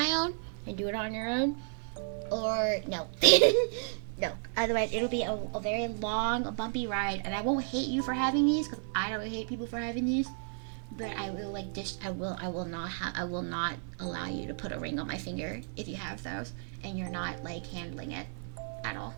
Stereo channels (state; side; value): silent; left; 56 dB below the other